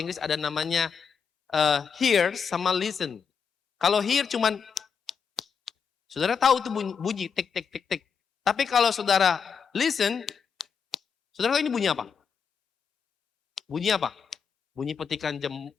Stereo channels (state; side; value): quieter; right; 6.4 dB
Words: ada namanya hear sama listen. Kalau hear cuman, saudara tahu itu bunyi, tik, tik, tik, tik. Tapi kalau saudara listen, saudara tahu ini bunyi apa? Bunyi apa? Bunyi petikan